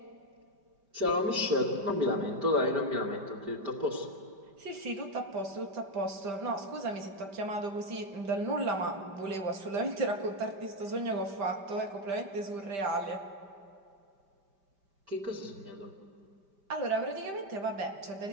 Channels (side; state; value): left; late; 5.1 ms